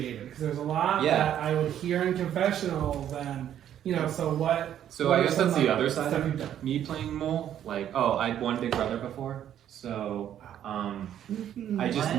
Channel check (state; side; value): quieter; left; 10.5 dB